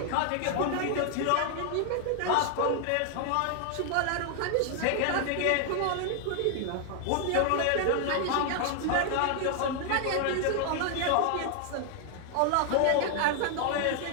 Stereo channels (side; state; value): both; different; correlation 0.00